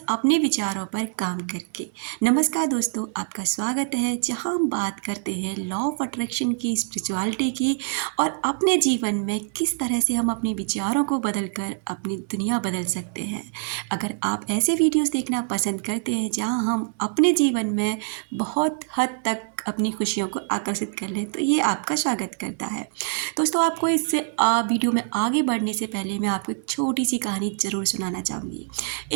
अपने विचारों पर काम करके। नमस्कार दोस्तों, आपका स्वागत है जहां हम बात करते हैं लॉ ऑफ अट्रैक्शन की, स्पिरिचुअलिटी की और अपने जीवन में किस तरह से हम अपने विचारों को बदलकर अपनी दुनिया बदल सकते हैं। अगर आप ऐसे वीडियोस देखना पसंद करते हैं जहां हम अपने जीवन में बहुत हद तक अपनी खुशियों को आकर्षित कर लें तो ये आपका स्वागत करता है। दोस्तों, आपको इस वीडियो में आगे बढ़ने से पहले मैं आपको एक छोटी सी कहानी ज़रूर सुनाना चाहूँगी।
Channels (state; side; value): silent; left; 62 dB below the other